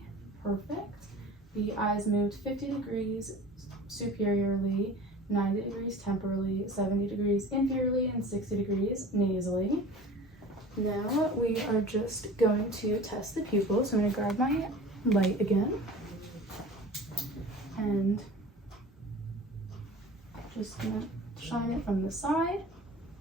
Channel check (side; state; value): both; normal; correlation 0.40